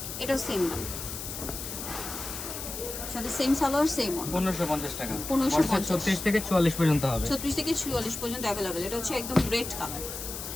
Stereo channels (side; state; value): left; noise; hiss, 7 dB below the sound